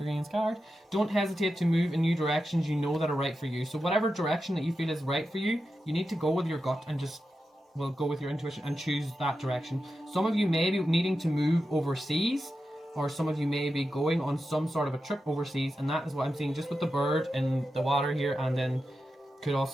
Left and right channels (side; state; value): both; normal; correlation 0.90